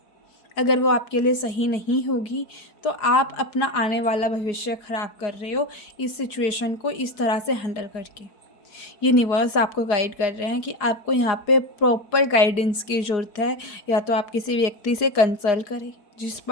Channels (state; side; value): late; right; 4.8 ms